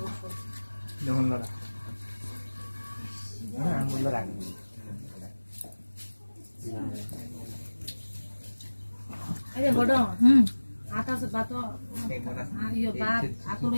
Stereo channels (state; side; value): inverted; both; correlation -1.00